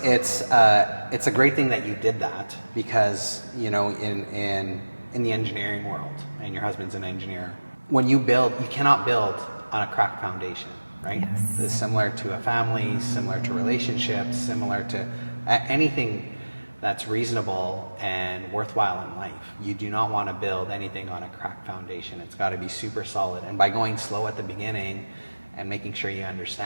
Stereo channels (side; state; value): both; inverted; correlation -1.00